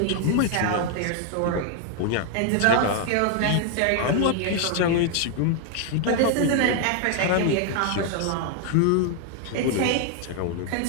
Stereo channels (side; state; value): both; different; correlation 0.00